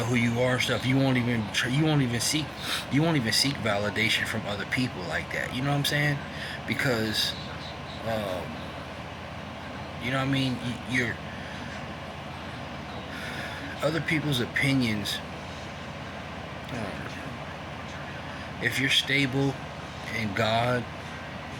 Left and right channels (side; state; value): both; identical; correlation 1.00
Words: who you are and stuff, you won't even seek validation from other people like that. You know what I'm saying? Because, you know what I mean? You're other people's opinions. If you're stable in God